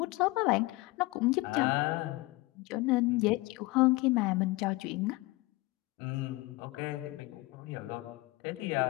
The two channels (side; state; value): right; quieter; 21.8 dB